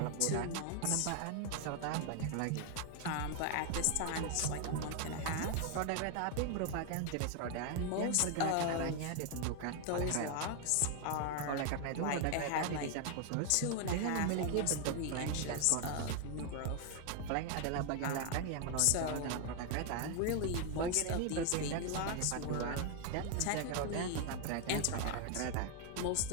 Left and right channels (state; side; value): different; both; correlation 0.00